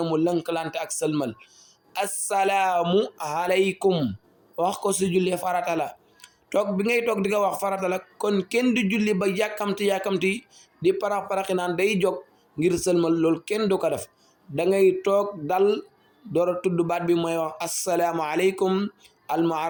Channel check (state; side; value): identical; both; correlation 1.00